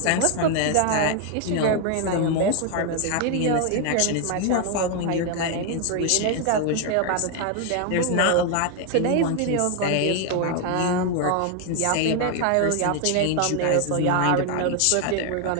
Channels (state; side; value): different; both; correlation 0.00